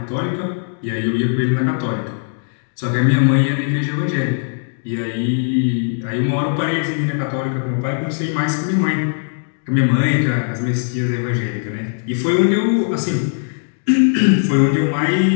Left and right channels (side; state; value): right; silent; digital silence